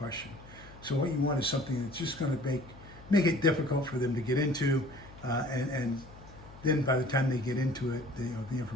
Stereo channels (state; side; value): noise; left; hum, 19 dB below the sound